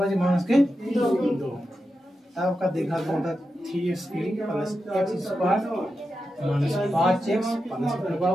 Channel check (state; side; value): normal; both; correlation 0.89